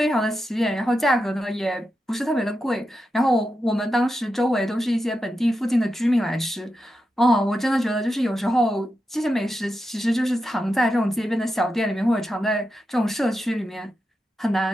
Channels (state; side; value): normal; both; correlation 0.88